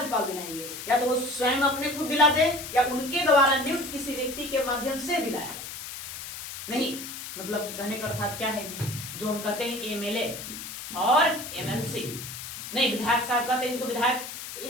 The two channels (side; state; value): left; noise; hiss, 9 dB below the sound